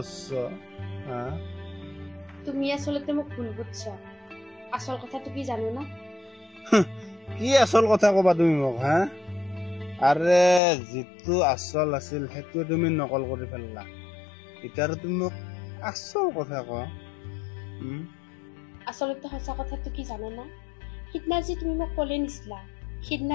তুমি আচলতে মোক ভুল বুঝছ আসল কথাটো কি জানো না কি আসল কথা কবা তুমি মোক আৰে যিটো আসল আছিল সেইটো তুমি নকল কৰি ফেললা এতিয়া তুমি মোক আসল কথা ক আচলতে সঁচা কথাটো কি জানো না সিদিনা যে তুমি মোক কলে নিছিলা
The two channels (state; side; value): drops out; right; at 10.6 s